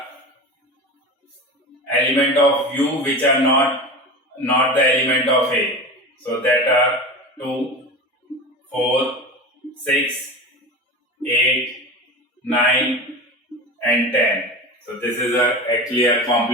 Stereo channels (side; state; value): both; normal; correlation 0.29